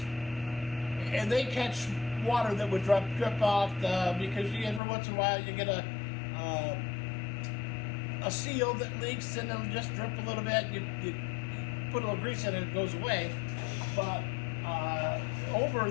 and they catch water that would drip off because every once in a while you get a seal that leaks, and it'll just drip a little bit. You put a little grease in it, it goes away. But over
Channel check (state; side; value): drops out; right; at 4.8 s